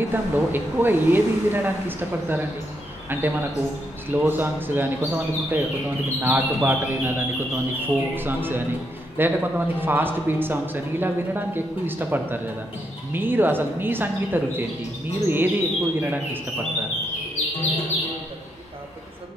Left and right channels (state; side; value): normal; both; correlation 0.79